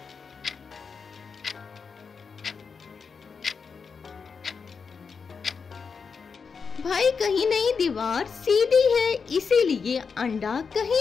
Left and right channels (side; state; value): right; quieter; 5.6 dB